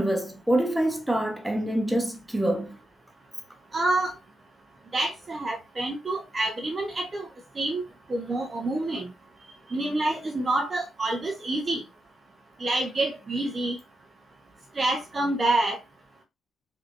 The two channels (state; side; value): normal; both; correlation 0.87